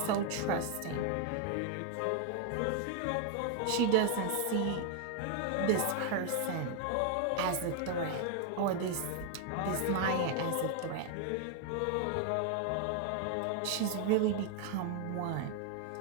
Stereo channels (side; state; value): both; different; correlation 0.00